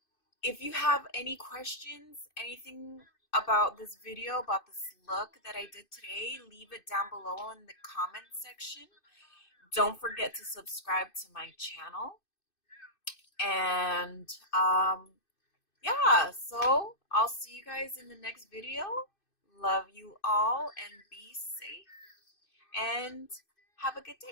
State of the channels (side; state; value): right; late; 2.6 ms